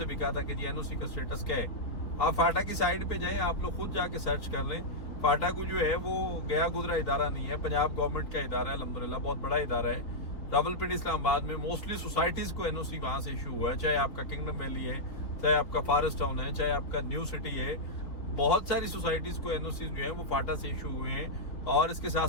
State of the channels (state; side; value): late; right; 3.8 ms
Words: भी कहा था कि जी एनओसी का स्टेटस क्या है। आप फाटा की साइड पे जाएं, आप लोग खुद जाके सर्च कर लें। फाटा को जो है वो गया गुजरा इदारा नहीं है, पंजाब गवर्नमेंट का इदारा है, अल्हम्दुलिल्लाह बहुत बड़ा इदारा है। रावलपिंडी इस्लामाबाद में मोस्टली सोसाइटीज को एनओसी वहां से इशू हुआ है, चाहे आपका किंगडम वैली है, चाहे आपका फॉरेस्ट टाउन है, चाहे आपका न्यू सिटी है, बहुत सारी सोसाइटीज को एनओसी जो है वो फाटा से इशू हुए हैं। और इसके साथ